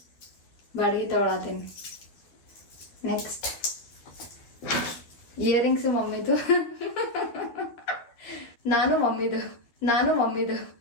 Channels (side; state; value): right; late; 12 ms